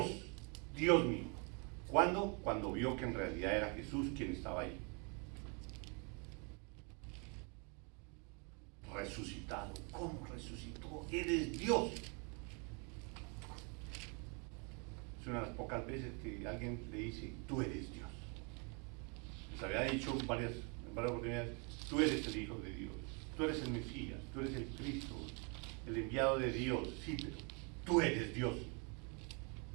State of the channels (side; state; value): left; quieter; 34.5 dB